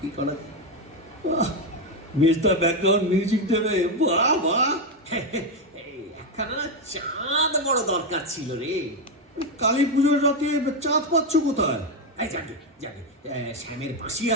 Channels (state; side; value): normal; both; correlation 0.07